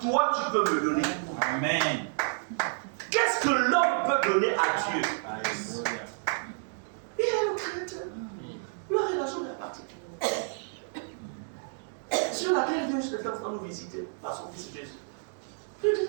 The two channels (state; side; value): silent; left; digital silence